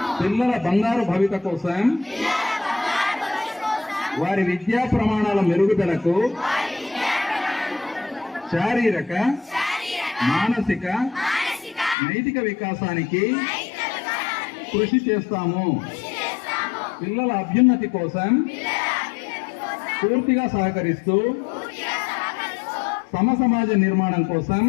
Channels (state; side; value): drops out; right; at 12.0 s